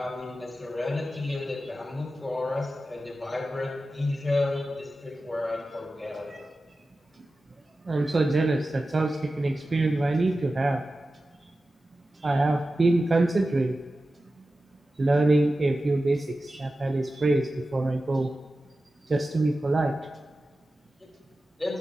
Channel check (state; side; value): normal; both; correlation 0.94